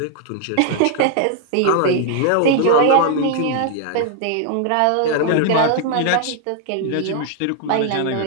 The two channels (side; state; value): both; different; correlation 0.00